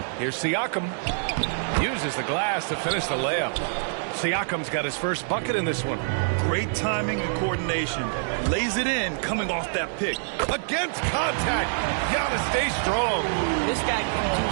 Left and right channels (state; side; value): silent; left; digital silence